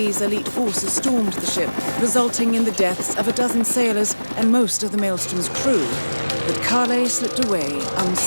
elite forces stormed the ship, resulting in the deaths of a dozen sailors and most of the Maelstrom's crew. But Kale slipped away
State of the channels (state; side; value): inverted; both; correlation -1.00